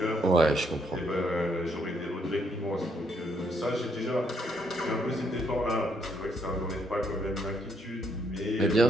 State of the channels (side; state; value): both; normal; correlation 0.72